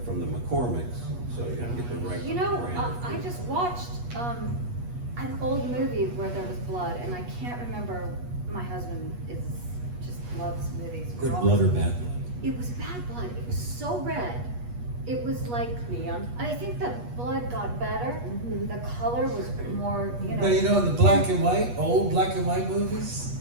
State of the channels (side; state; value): left; late; 8.3 ms